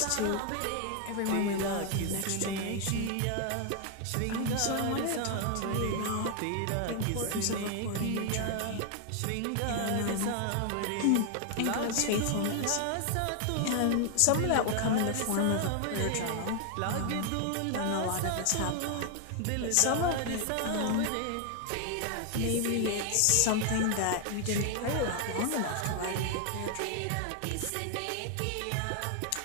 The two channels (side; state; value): both; different; correlation 0.00